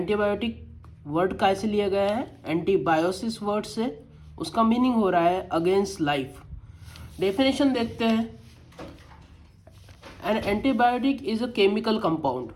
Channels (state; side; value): identical; both; correlation 1.00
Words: वर्ड कैसे लिया गया है? एंटीबायोसिस वर्ड से। उसका मीनिंग हो रहा है अगेंस्ट लाइफ। डेफिनेशन देखते हैं। An antibiotic is a chemical compound.